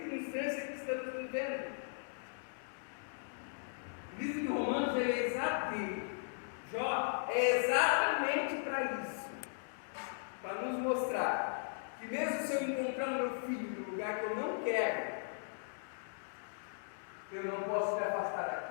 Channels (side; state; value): right; silent; digital silence